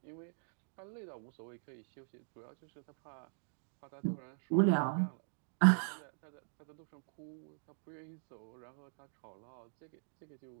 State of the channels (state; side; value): silent; left; digital silence